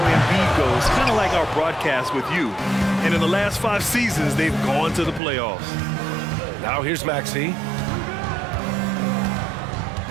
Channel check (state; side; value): drops out; left; at 5.2 s